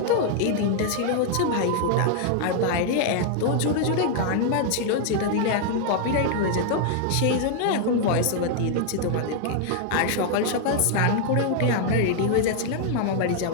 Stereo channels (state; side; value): different; both; correlation 0.00